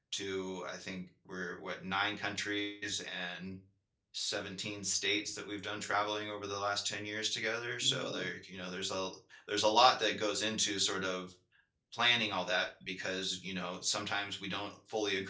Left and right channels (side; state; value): both; identical; correlation 1.00